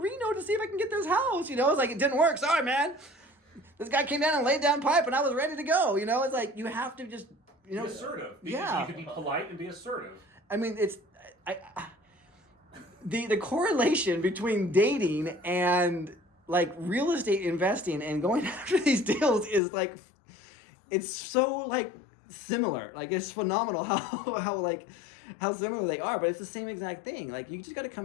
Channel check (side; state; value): right; drops out; at 19.6 s